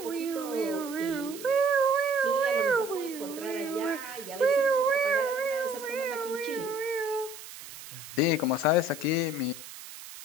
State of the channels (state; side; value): noise; right; hiss, 14 dB below the sound